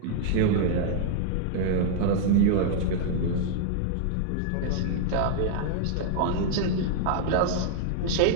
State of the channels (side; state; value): both; different; correlation 0.00